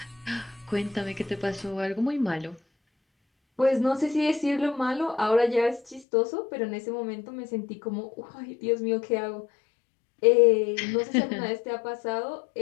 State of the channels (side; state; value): right; drops out; at 6.1 s